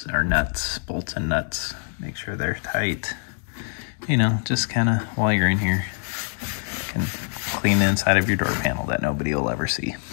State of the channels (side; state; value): right; silent; 58 dB below the other